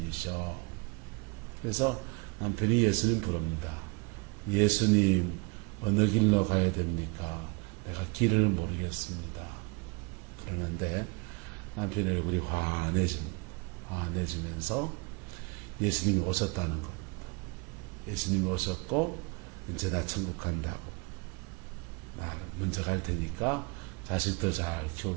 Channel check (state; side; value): quieter; left; 30.0 dB